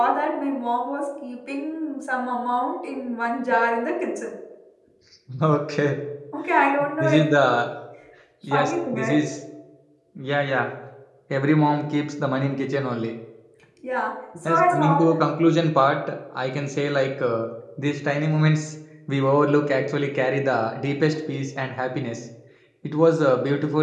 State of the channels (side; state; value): both; identical; correlation 1.00